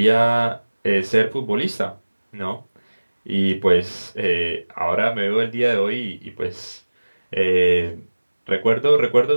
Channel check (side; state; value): both; inverted; correlation -1.00